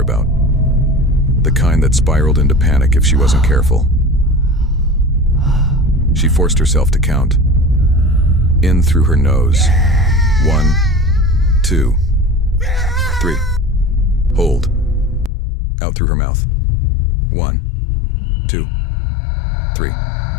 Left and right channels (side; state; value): right; drops out; at 15.3 s